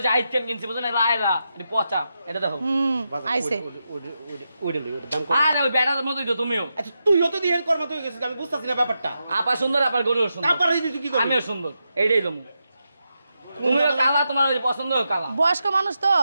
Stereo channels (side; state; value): both; inverted; correlation -0.87